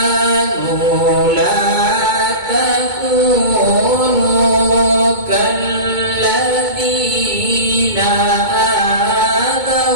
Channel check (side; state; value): left; late; 2.2 ms